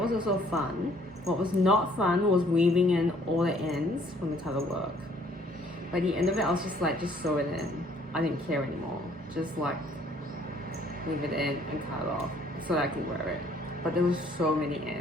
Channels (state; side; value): normal; both; correlation 0.61